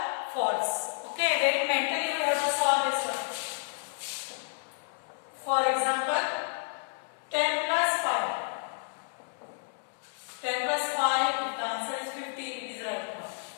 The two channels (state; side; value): silent; right; 57 dB below the other